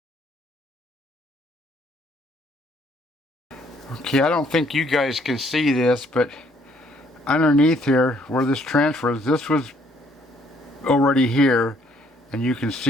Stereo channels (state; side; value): normal; both; correlation 0.65